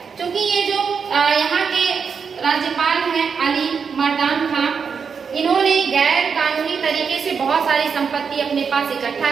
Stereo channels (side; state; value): left; quieter; 6.1 dB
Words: क्योंकि ये जो यहाँ के राज्यपाल हैं अली मर्दान खां, इन्होंने गैर कानूनी तरीके से बहुत सारी संपत्ति अपने पास इकट्ठा